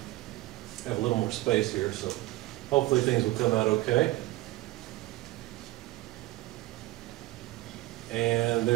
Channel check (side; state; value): left; quieter; 18.3 dB